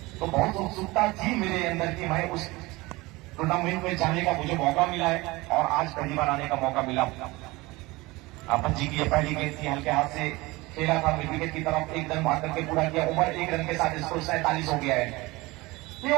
तो बहुत उत्सुकता थी मेरे अंदर कि मैं उस टूर्नामेंट में जाने का मुझे मौका मिला है और आज पहली बार आने का मौका मिला। आपन जी की ये पहली गेंद थी, हल्के हाथ से खेला था मिड विकेट की तरफ, एक रन मार करके पूरा किया। ओवर 1 रन के साथ स्कोर 47 हो गया है। ये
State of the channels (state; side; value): quieter; left; 21.8 dB